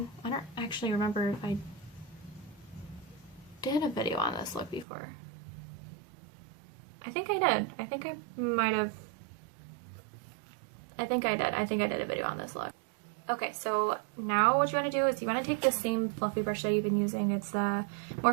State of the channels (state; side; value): drops out; left; at 4.9 s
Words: I don't actually remember if I did a video on this look before. I think I did. I think I might have. I think I did. I think I did a video on this look. Okay, so now what you want to do is you want to take the same fluffy brush that you've been using. It's the